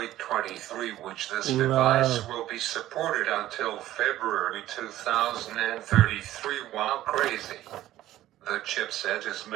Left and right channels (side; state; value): left; quieter; 14.2 dB